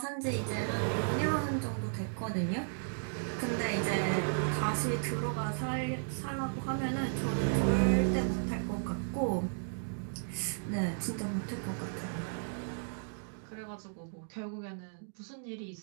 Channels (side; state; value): left; silent; digital silence